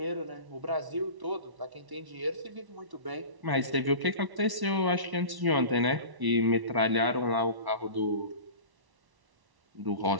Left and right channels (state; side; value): late; left; 1.1 ms